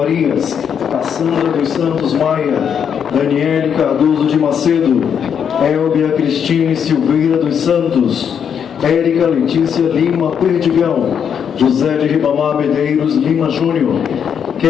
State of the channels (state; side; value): quieter; right; 7.8 dB